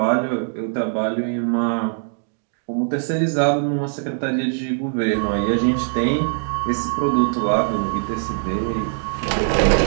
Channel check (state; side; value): silent; left; 65 dB below the other